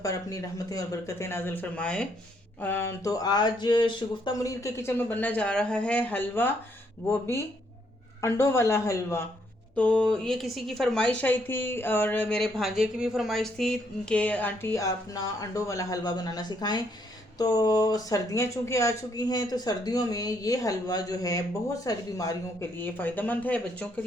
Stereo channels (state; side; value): normal; both; correlation 0.72